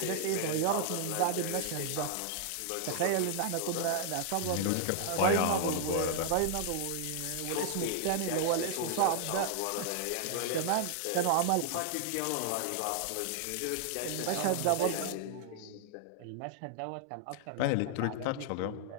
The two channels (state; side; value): different; both; correlation -0.01